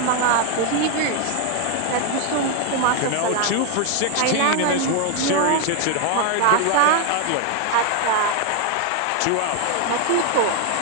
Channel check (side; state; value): both; different; correlation 0.01